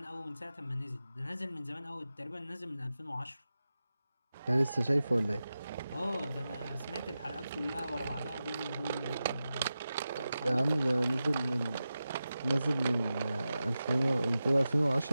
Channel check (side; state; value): both; inverted; correlation -0.93